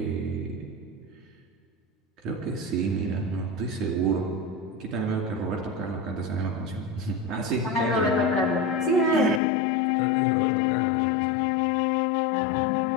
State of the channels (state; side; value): drops out; right; at 9.4 s